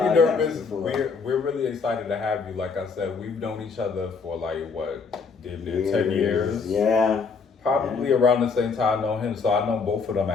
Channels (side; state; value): right; quieter; 5.1 dB